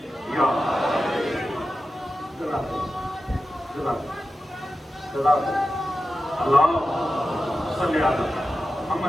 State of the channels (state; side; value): normal; both; correlation 0.92